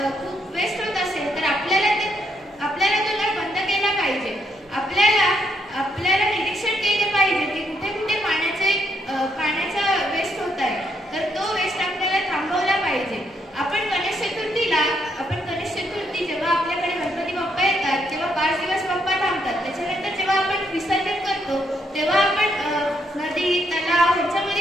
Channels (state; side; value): normal; both; correlation 0.75